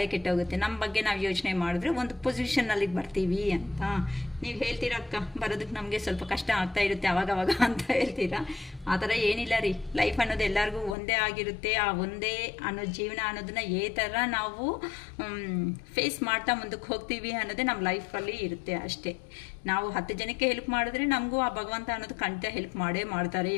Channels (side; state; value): right; drops out; at 11.0 s